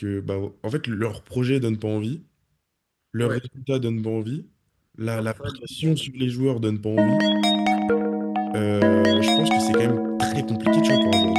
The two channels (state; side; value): identical; both; correlation 1.00